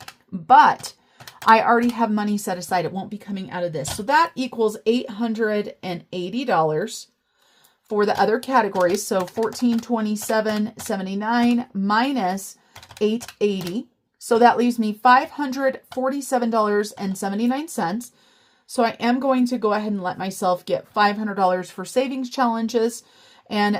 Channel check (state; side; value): identical; both; correlation 1.00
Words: but I already have money set aside. It won't be coming out of this. So that equals $880 for the other categories. So $1,427.79 minus $880. So that leaves me $547.79. So I am going to go ahead and let myself get $500 for savings challenges. And